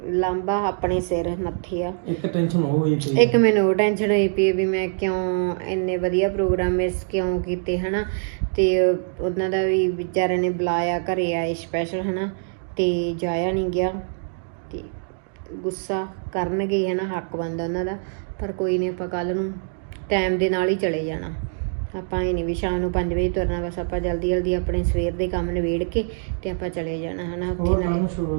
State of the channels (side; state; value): left; silent; digital silence